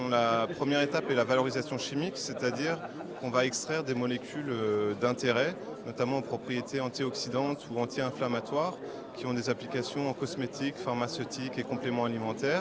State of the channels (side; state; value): both; identical; correlation 1.00